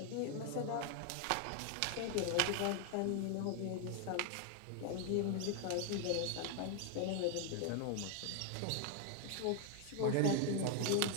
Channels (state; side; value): different; both; correlation 0.00